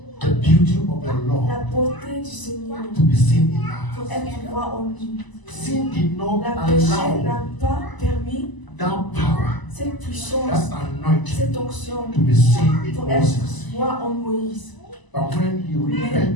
the beauty of the la Lord beauté du Seigneur to be seen in pour us. être droit en lui. Sin did not La péché allow n'a pas permis that power, cette puissance, that anointing cette onction to be seen in pour Moses. être droit en Moïse. But when he Mais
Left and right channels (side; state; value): right; late; 1.0 ms